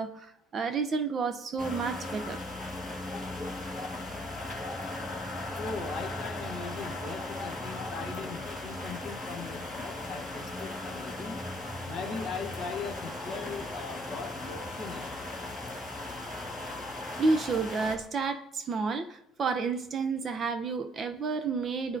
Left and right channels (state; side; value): normal; both; correlation 0.65